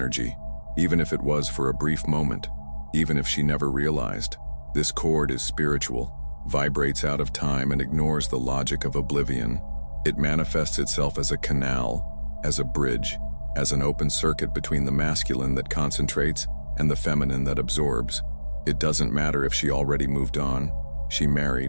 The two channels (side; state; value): both; inverted; correlation -1.00